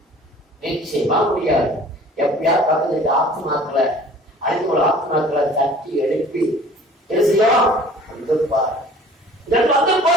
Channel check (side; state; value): both; normal; correlation 0.48